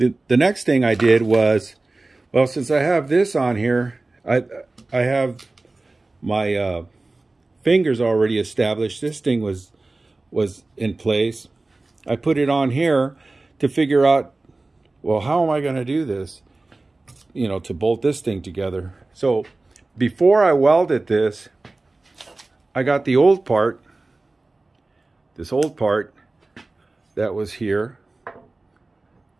next thing I did was, well, since I have this on here, I have my fingers already established. This thing was in place. I put it on here to figure out, well, how am I going to do this, you know, to bolt this thing together. So before I welded this, I got the old part, this old part that was here,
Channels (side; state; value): left; quieter; 3.2 dB